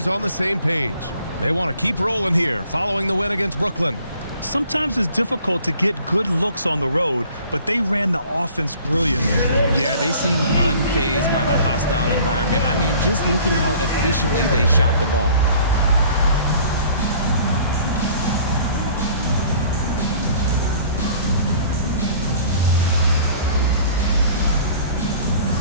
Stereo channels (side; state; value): both; inverted; correlation -0.51